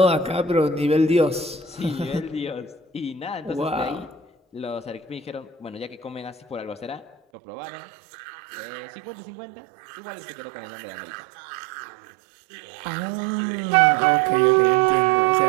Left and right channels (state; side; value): drops out; left; at 7.2 s